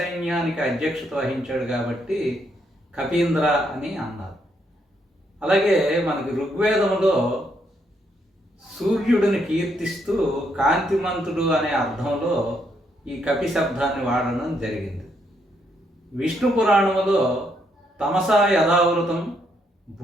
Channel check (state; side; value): normal; both; correlation 0.75